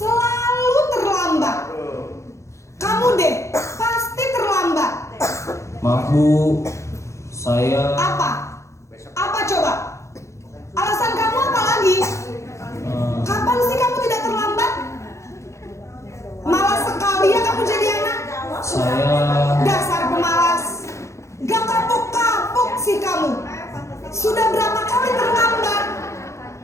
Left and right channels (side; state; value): right; late; 0.14 ms